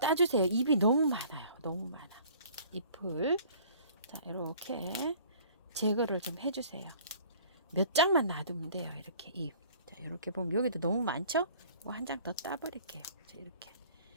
잎이 너무 많아요. 너무 많아. 잎을. 자, 이렇게 제거를 좀 해주세요. 몇 장만 놔두면 돼요. 이렇게 잎. 자, 이렇게 보면 여기도 너무 많죠? 한 장 더 따버릴게요. 자, 이렇게.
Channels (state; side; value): inverted; both; correlation -0.51